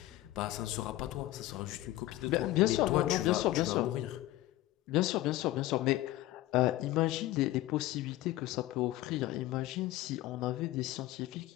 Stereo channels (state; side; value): quieter; right; 16.2 dB